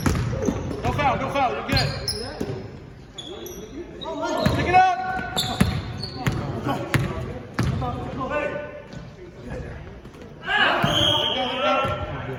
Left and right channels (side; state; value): both; identical; correlation 1.00